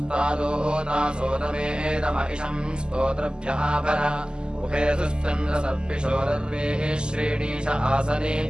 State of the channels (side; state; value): left; late; 0.047 ms